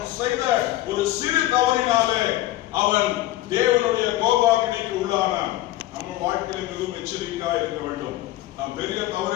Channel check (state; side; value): quieter; right; 15.8 dB